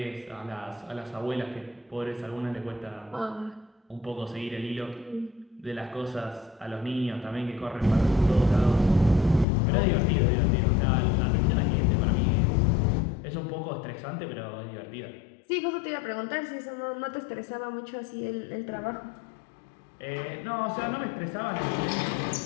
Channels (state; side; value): drops out; right; at 9.5 s